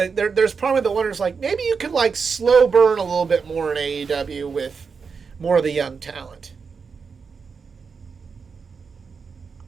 probably the wonders like maybe you could like slow burn a little bit more in AEW with more of the young talent.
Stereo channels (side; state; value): left; quieter; 5.5 dB